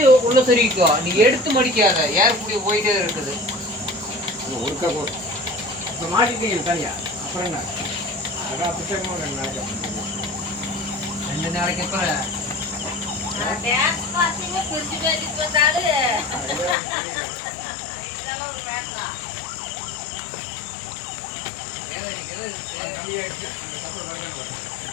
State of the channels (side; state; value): right; drops out; at 16.8 s